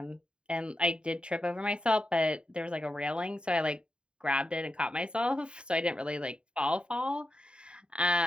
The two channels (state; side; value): late; left; 0.052 ms